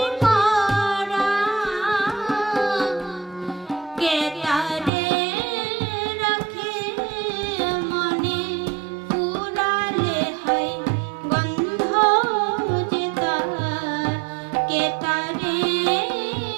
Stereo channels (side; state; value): left; drops out; at 4.9 s